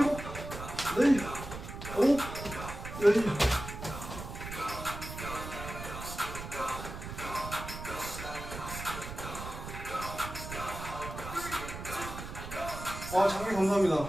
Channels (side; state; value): right; noise; rumble, 9 dB below the sound